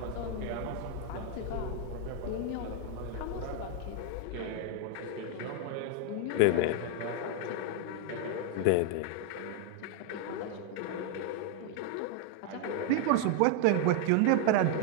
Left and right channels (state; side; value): different; both; correlation 0.01